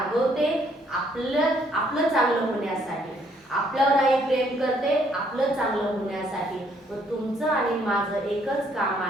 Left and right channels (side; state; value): both; normal; correlation 0.67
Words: आपलं चांगलं होण्यासाठी, आपल्यावर आई प्रेम करते आपलं चांगलं होण्यासाठी. व तुमचं आणि माझं एकच काम